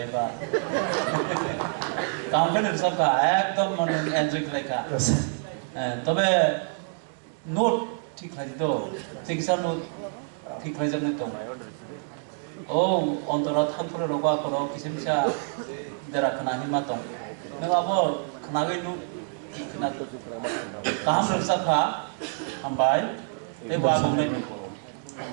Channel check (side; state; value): left; silent; 60 dB below the other